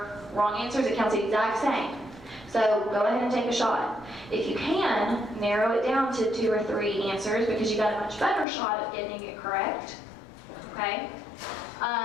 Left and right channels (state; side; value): drops out; right; at 8.5 s